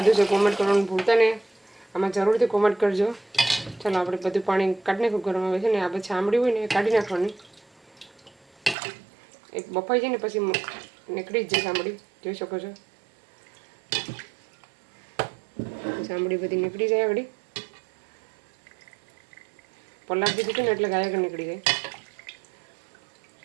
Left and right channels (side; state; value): left; drops out; at 8.8 s